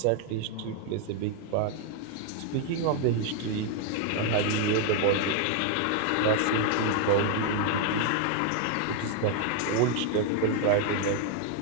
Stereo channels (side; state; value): both; different; correlation 0.01